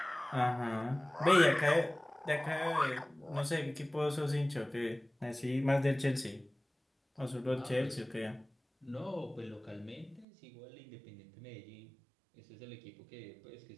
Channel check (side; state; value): left; drops out; at 10.2 s